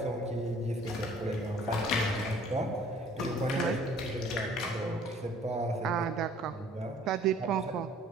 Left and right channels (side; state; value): both; normal; correlation 0.54